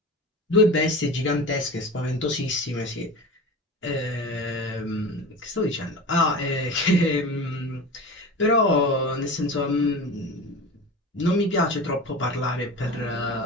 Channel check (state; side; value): normal; both; correlation 0.31